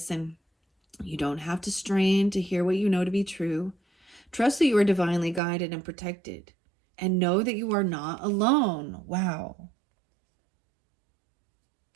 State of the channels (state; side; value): drops out; left; at 5.4 s